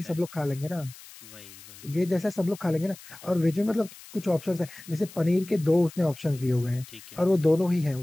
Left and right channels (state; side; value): noise; left; hiss, 18 dB below the sound